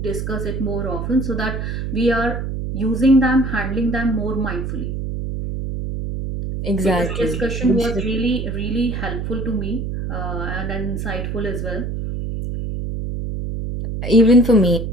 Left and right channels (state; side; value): noise; right; hum, 4 dB below the sound